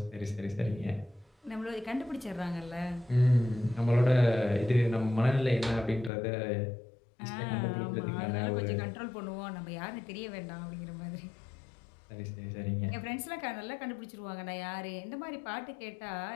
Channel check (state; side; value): drops out; right; at 6.1 s